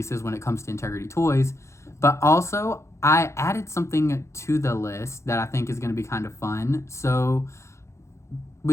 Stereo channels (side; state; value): right; late; 0.14 ms